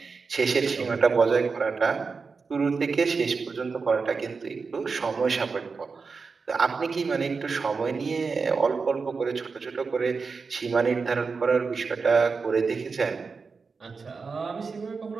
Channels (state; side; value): quieter; left; 4.8 dB